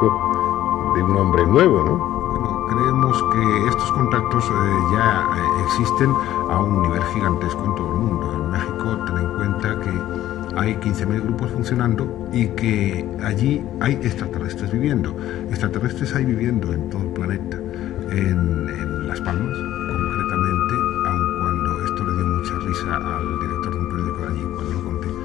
de un hombre nuevo, ¿no? Bueno, creemos que estos contactos ya existen a un nivel gigantesco en todo el mundo. En México, ten en cuenta que hay 15.000 grupos funcionando y que allí hay extraterrestres viviendo. Extraterrestres hay viviendo en todo el planeta. En Las Palmas, concretamente, aun cuando esto le dio mucha risa al director de un periódico de allí cuando lo conté,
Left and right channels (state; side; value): quieter; right; 13.3 dB